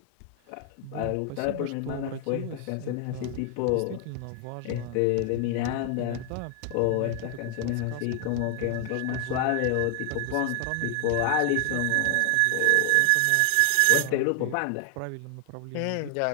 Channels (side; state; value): both; different; correlation 0.00